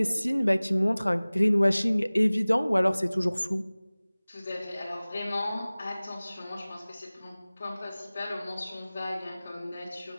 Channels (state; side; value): inverted; both; correlation -0.99